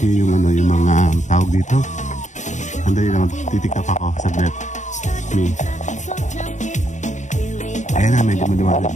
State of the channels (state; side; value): late; right; 0.35 ms